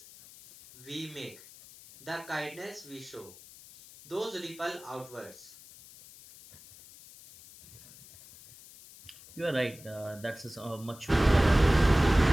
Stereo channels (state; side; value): noise; left; hiss, 20 dB below the sound